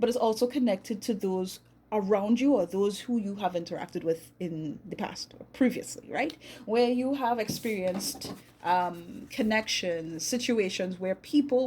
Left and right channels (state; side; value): identical; both; correlation 1.00